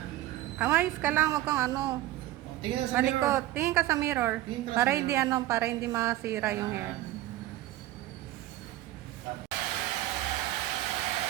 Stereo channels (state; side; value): quieter; left; 15.6 dB